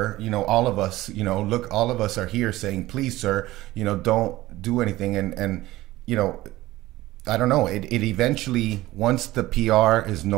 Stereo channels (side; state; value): left; quieter; 17.3 dB